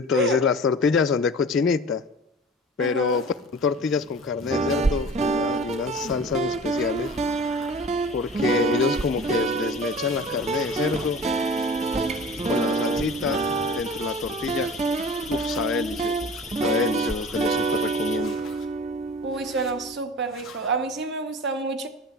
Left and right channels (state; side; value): normal; both; correlation 0.40